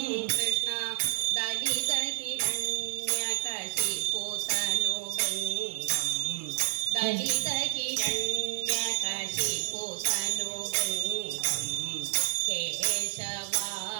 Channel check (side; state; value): left; silent; 58 dB below the other